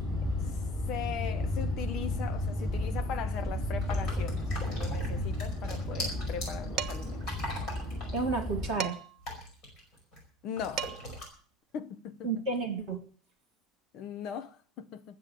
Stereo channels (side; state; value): both; normal; correlation 0.47